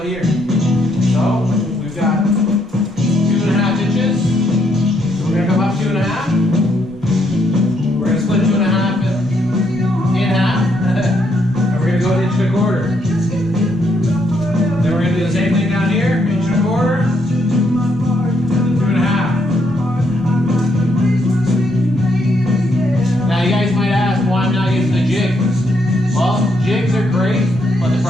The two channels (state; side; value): normal; both; correlation 0.75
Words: here. So we've got 2.5 inches. So we're going to come up 2.5. We're going to split 2.5 in half, and we're going to go 1.25 inches. Then we're going to do the same thing down here, 1.25 inches, and 2.5. Now you guys might ask why I'm not using the jigs. Well, jigs are great, but the